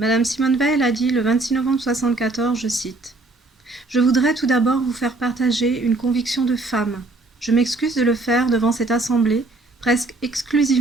Simone Veil a dit le 26 novembre 1974, je cite: « Je voudrais tout d'abord vous faire partager une conviction de femme. Je m'excuse de le faire devant cette assemblée, presque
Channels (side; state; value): left; quieter; 3.1 dB